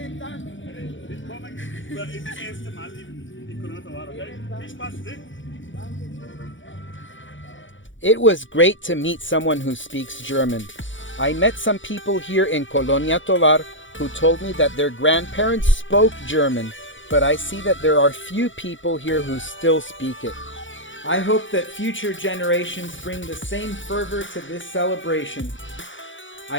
Dank. Willkommen. Es ist das erste Mal in Colonia Tovar, okay? Viel Spaß, ne? It was great to meet someone who speaks German. I met some people here in Colonia Tovar who told me that their grandparents spoke German, but I see that there are few people here who still speak it. I hope that future generations bring the same fervor to this celebration.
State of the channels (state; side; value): late; right; 0.56 ms